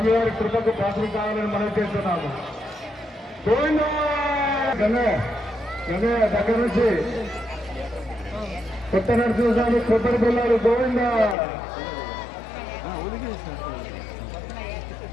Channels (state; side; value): drops out; right; at 11.4 s